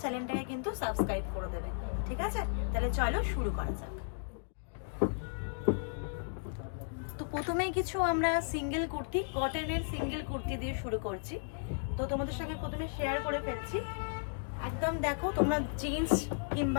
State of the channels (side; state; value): right; silent; digital silence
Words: চ্যানেলটাকে কিন্তু সাবস্ক্রাইব করে দেবে। ঠিক আছে, তাহলে চলো শুরু করা যাক। তো প্রথমেই কিছু আমরা সিঙ্গেল কুর্তি, কটনের সিঙ্গেল কুর্তি দিয়ে শুরু করছি। তো তোমাদের সঙ্গে প্রথমে শেয়ার করে ফেলছি। একদম দেখো, তোমরা জিন্স